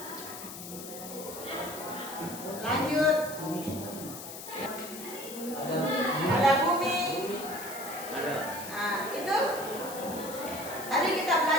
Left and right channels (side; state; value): left; noise; hiss, 11 dB below the sound